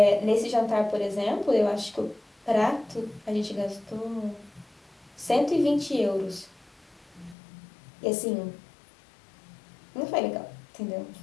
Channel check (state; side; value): drops out; right; at 7.4 s